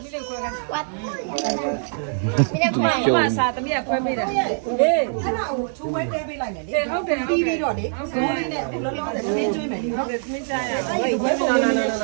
ူ မစားသမီးကခွဲပေးတယ်ဟေး အဲ့ဒါကိုချိုးဝဲတဲပေးလိုက်မယ်လေ ဟုတ်တယ် ပြီးပြီးတော့လေဇိုးလေးနဲ့လောလောဆယ်နင်းကျွေးမယ်လေနော် သမီးစားရ အဲ့ဒီဝဲပုံလေးနဲ့ရှ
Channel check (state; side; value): silent; left; 63 dB below the other